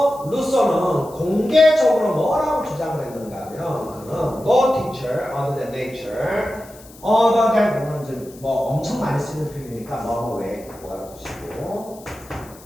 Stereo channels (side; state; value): left; noise; hiss, 22 dB below the sound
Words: 루소는 공개적으로 뭐라고 주장을 했는가 하면 그는 no teacher other than nature other than 뭐는 이제 뭐 엄청 많이 쓰는 표현이니까 뭐 왜 그거 알아두시고